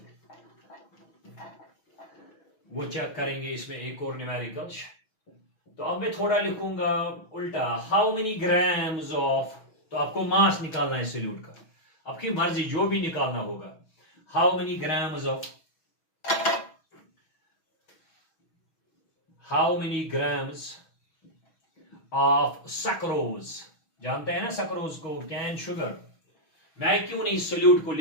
वो चेक करेंगे। इसमें एक और न्यूमेरिकल, तो अब मैं थोड़ा लिखूंगा उल्टा, हाउ मेनी ग्राम्स ऑफ, तो आपको मास निकालना है सॉल्यूट का, आपकी मर्जी जो भी निकालना होगा। How many grams of, how many grams of sucrose, जानते हैं ना सक्रोज को, कैन शुगर। मैं क्यों नहीं सोल्यूट को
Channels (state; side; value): late; right; 6.2 ms